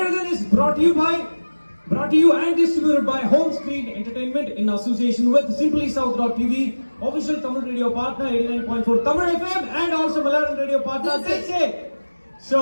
is brought to you and distributed by Home Screen Entertainment in association with simplysouth.tv, official Tamil radio partner 89.4 Tamil FM and also Malayalam radio partner KK. So,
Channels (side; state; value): both; inverted; correlation -1.00